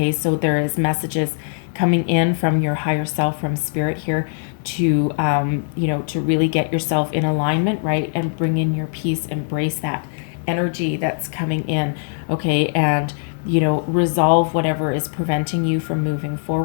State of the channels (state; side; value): silent; right; digital silence